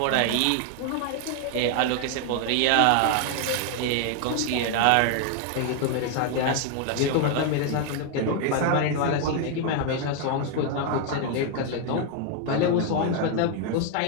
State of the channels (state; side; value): different; both; correlation 0.00